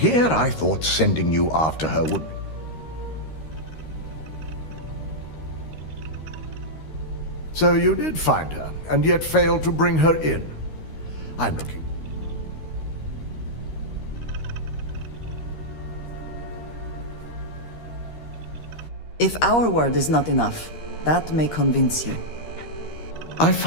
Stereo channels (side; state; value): right; late; 13 ms